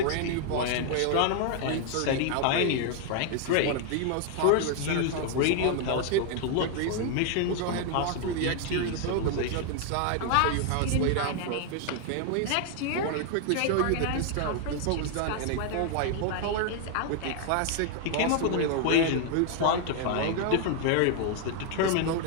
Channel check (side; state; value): both; different; correlation 0.00